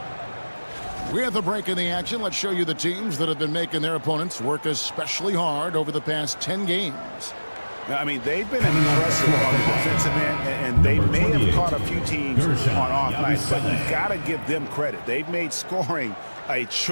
With a break in the action, let's show you the teams that have been making their opponents work especially hard over the past 10 games. I mean, they've been impressive on the defensive end, and they may have caught a few teams on off nights, but you've got to give them credit. They've made scoring a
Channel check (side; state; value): both; inverted; correlation -1.00